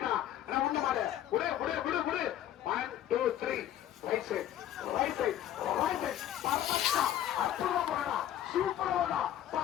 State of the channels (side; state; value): right; quieter; 11.7 dB